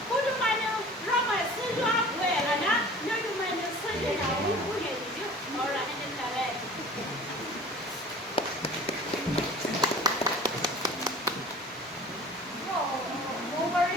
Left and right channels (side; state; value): both; normal; correlation 0.44